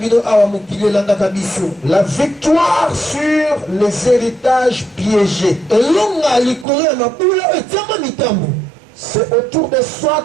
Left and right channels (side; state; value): left; drops out; at 6.7 s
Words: La victoire sur les héritages piégés. C'est autour de